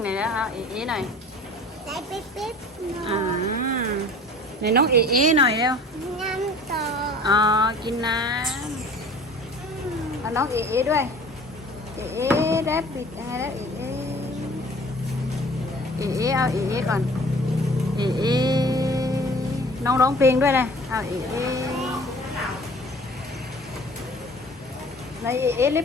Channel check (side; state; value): both; normal; correlation 0.47